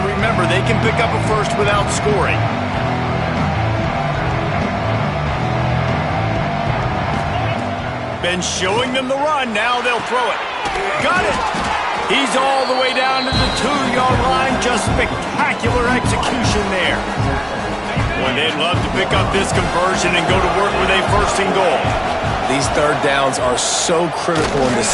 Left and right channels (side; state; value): both; identical; correlation 1.00